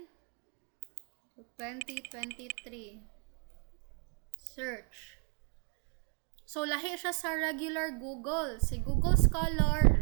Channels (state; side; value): quieter; left; 36.0 dB